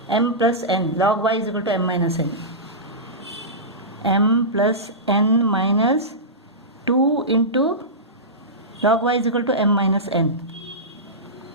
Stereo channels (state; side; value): normal; both; correlation -0.16